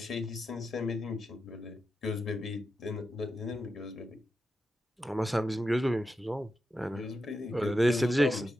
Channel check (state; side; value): normal; both; correlation 0.88